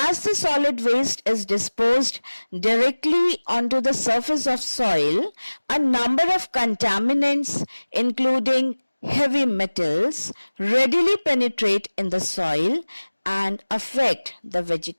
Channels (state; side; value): inverted; both; correlation -1.00